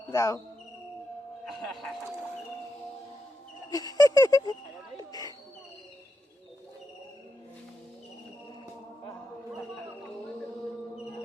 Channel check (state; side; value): normal; both; correlation 0.85